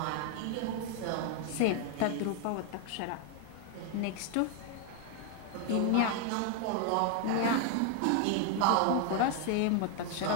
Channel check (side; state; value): both; different; correlation 0.01